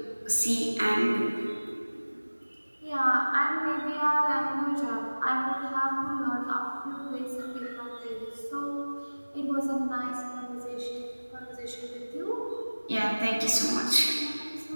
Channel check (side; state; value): both; inverted; correlation -1.00